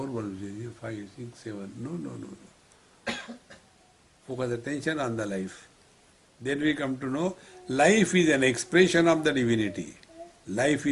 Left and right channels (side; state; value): both; identical; correlation 1.00